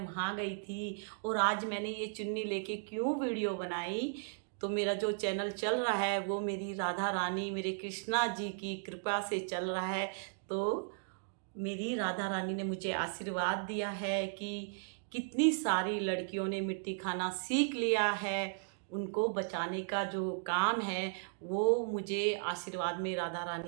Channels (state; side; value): silent; left; digital silence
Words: गई थी। और आज मैंने ये चुन्नी लेके क्यों वीडियो बनाई, तो मेरा जो चैनल चल रहा है वो मेरी राधा रानी, मेरे कृष्णा जी की कृपा से चल रहा है। तो मेरी राधा रानी ने मुझे आशीर्वाद दिया है कि कितनी सारी लड़कियों ने मिट्टी खाना सीख लिया है, उनको बचाने का जो काम है वो मुझे आशीर्वाद में राधा